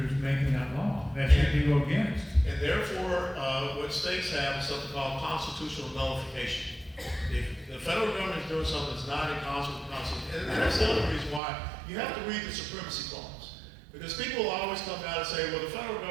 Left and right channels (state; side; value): drops out; left; at 11.4 s